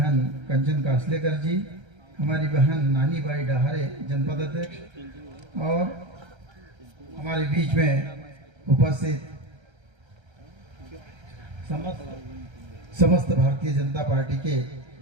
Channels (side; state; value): left; late; 1.3 ms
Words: कंचन कासलेकर जी, हमारी बहन नानी बाई डहारे जनपद अध्यक्ष, और हमारे बीच में उपस्थित समस्त भारतीय जनता पार्टी के